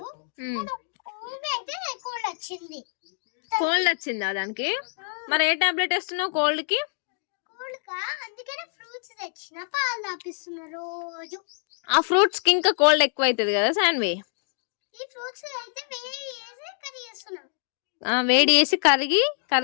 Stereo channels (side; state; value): right; silent; 61 dB below the other